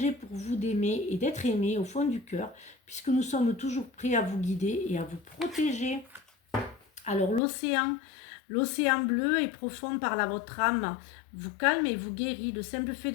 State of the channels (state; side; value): drops out; right; at 7.4 s